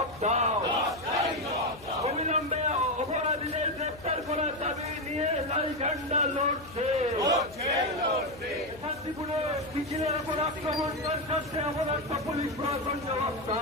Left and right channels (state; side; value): noise; left; hum, 20 dB below the sound